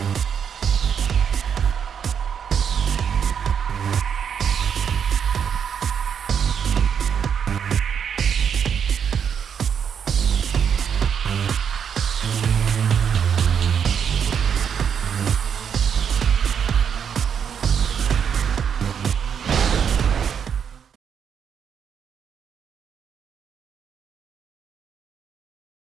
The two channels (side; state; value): left; quieter; 7.6 dB